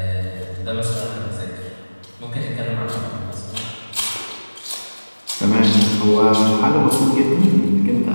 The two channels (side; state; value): both; inverted; correlation -1.00